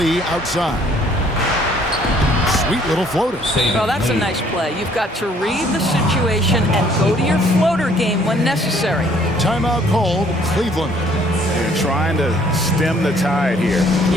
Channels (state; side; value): normal; both; correlation 0.61